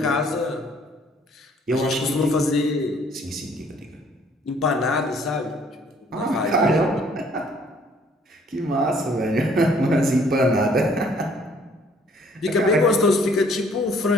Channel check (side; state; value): both; normal; correlation 0.61